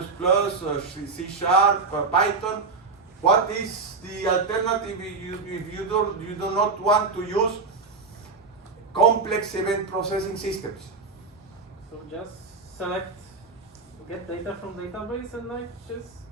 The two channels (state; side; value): quieter; left; 4.3 dB